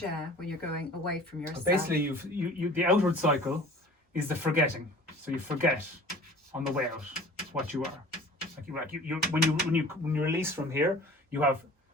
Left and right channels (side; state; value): both; normal; correlation 0.45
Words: when you're going away from yourself? So basically, you the outward cycle is the forgetting. So you forget on the way out what you are. When you release from here, you have